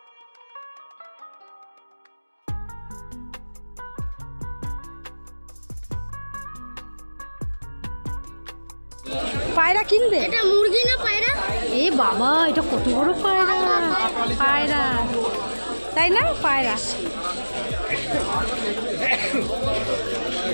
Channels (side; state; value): both; inverted; correlation -1.00